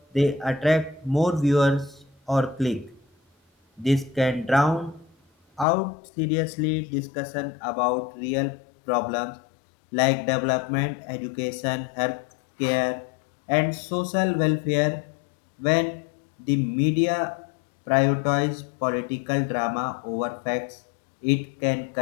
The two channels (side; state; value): right; drops out; at 5.7 s